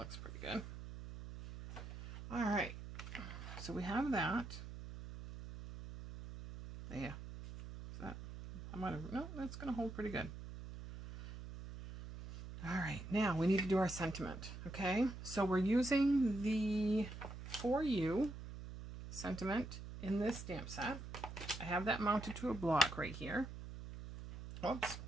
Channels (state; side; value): noise; right; hum, 10 dB below the sound